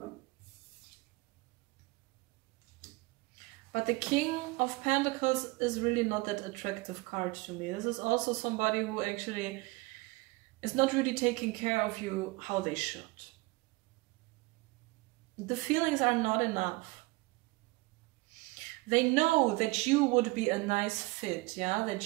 But the King of Pentacles is really not that attractive card to me. This is also somebody who actually is not really taking care of you how they should. The feelings are not enough. They know that you would be a nice fit, yeah,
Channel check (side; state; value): left; quieter; 23.5 dB